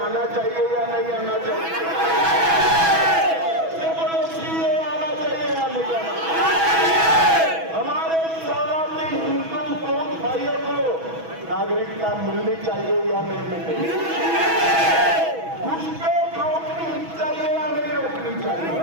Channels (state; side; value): late; left; 6.1 ms